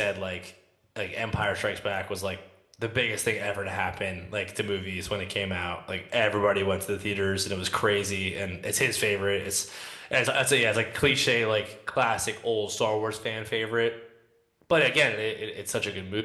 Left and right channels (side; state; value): both; identical; correlation 1.00